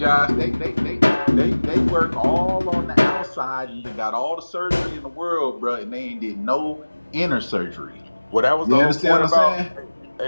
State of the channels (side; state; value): both; inverted; correlation -1.00